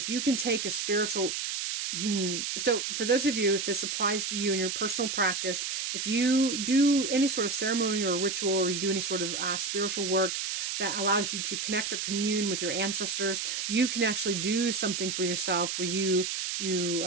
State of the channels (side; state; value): right; noise; hiss, 2 dB below the sound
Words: you can take a spiritual. So for those of you, if this applies to you in your personal practice, if you do any sort of ceremony or ritual, or you do any sort of spiritual work that allows you to connect or commune with your ancestors, you can actually do something for yourself where you